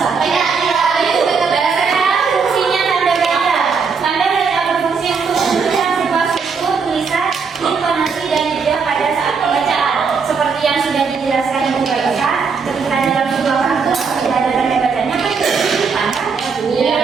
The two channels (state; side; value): quieter; left; 5.4 dB